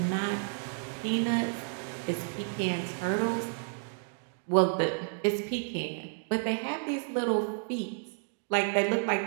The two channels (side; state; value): left; silent; 57 dB below the other